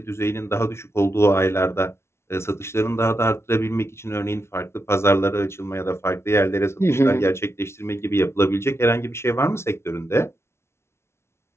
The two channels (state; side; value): late; right; 0.13 ms